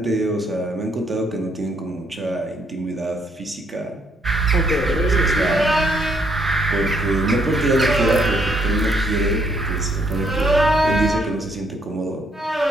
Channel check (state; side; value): normal; both; correlation 0.70